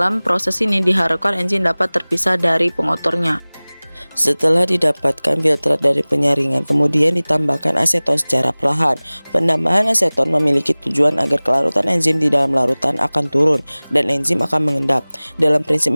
proses ini diharapkan enzim dapat terpisah dari pengotornya. Setelah didapatkan filtrat dari penyaringan, kemudian ditambahkan aseton secara perlahan. Penambahan aseton memiliki tujuan agar kelarutan enzim di dalam larutan akan turun dan enzim akan mengendap. Dalam prinsip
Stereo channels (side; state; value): both; inverted; correlation -1.00